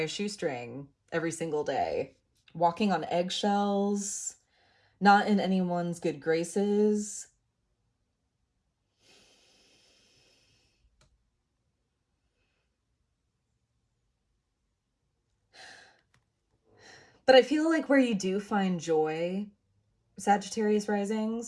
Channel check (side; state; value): both; identical; correlation 1.00